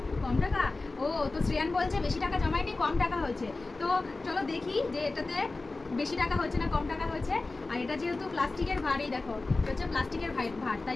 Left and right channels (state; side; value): quieter; right; 3.4 dB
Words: কম টাকা, ও তো শ্রেয়ান বলছে বেশি টাকা জমায়নি, কম টাকা হয়েছে। তো চলো দেখি যে এটাতে বেশি টাকা হয়েছে না কম টাকা হয়েছে। আর এটা যেহেতু প্লাস্টিকের ভার, এই দেখো এটা হচ্ছে প্লাস্টিকের ভার,